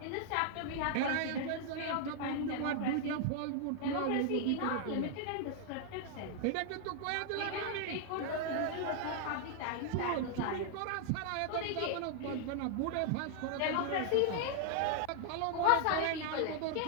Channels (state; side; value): different; both; correlation 0.00